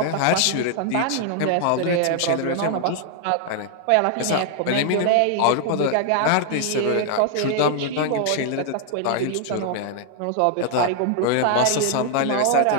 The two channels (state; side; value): different; both; correlation 0.00